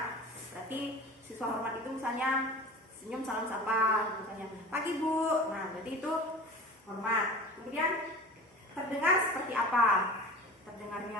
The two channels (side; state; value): both; normal; correlation 0.36